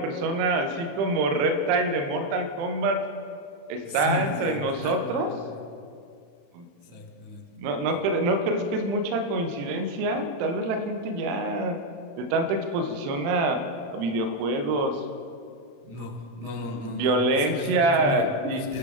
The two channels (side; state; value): left; late; 35 ms